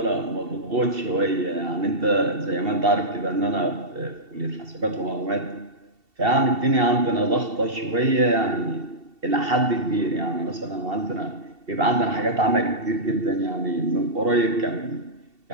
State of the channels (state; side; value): late; left; 2.7 ms